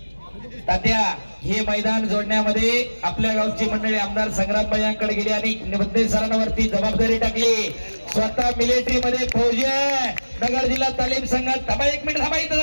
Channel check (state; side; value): inverted; both; correlation -1.00